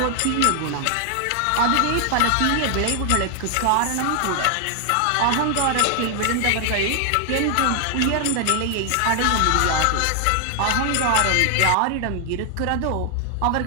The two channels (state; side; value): different; both; correlation 0.00